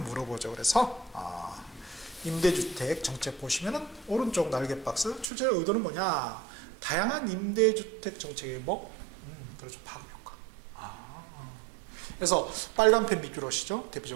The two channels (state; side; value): drops out; left; at 5.2 s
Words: 그래서 임대주택 정책 보시면은 오른쪽 날개 박스 출제의 의도는 뭐냐? 다양한 임대주택 정책의 뭐? 그렇죠. 파급 효과. 그래서 빨간 펜 밑줄 오시죠.